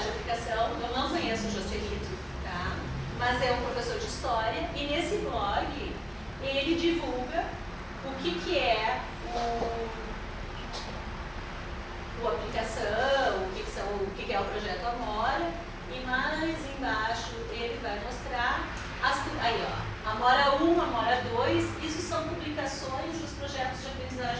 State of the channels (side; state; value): both; identical; correlation 1.00